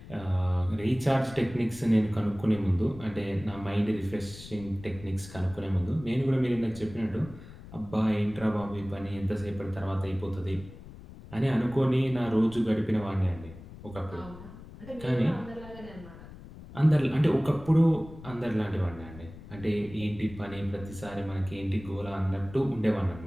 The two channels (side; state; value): left; noise; rumble, 16 dB below the sound